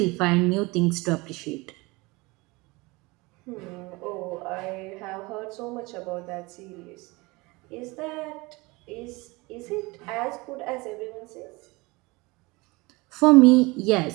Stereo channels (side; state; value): left; quieter; 24.0 dB